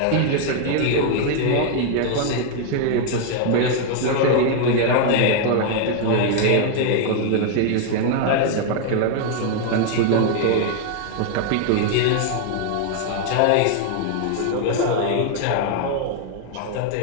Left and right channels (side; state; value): both; different; correlation 0.00